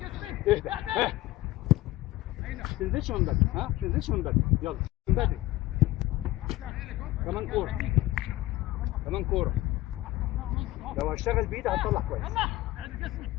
اهدى ها، ما تنزلش من بدري، ها ما تنزلش من بدري، يلا من بدري. كمان كوره، كمان كوره. لو هشتغل بايدي هتطلع كويس. يلا اعد جسمي.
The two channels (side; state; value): right; quieter; 17.0 dB